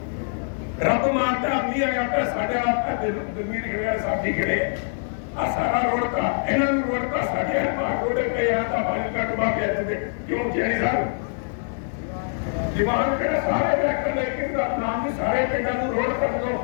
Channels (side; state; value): right; silent; 62 dB below the other